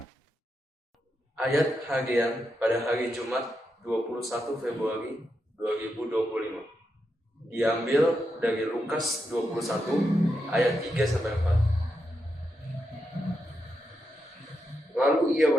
Ayat harian pada hari Jumat 21 Februari 2025 diambil dari Lukas 21 ayat 3-4. Lalu ia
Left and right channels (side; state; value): both; normal; correlation 0.85